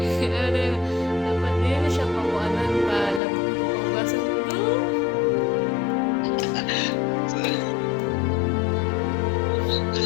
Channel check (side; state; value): right; drops out; at 3.2 s